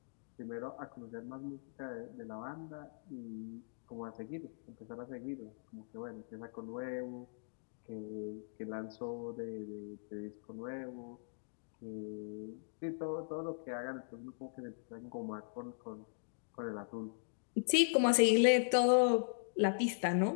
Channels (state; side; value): silent; right; digital silence